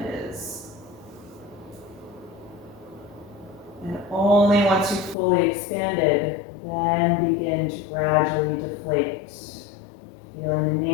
is. And only once you've fully expanded, then begin to gradually deflate. Feeling the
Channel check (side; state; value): right; drops out; at 5.2 s